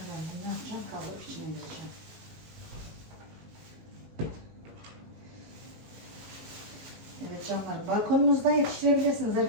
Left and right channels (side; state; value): left; late; 19 ms